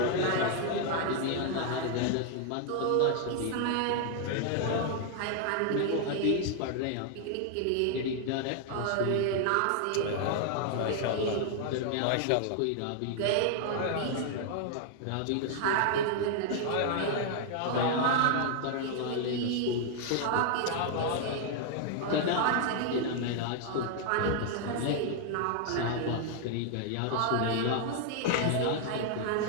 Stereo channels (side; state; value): both; different; correlation 0.00